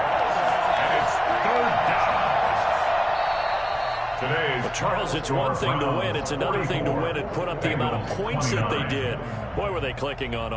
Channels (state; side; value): identical; both; correlation 1.00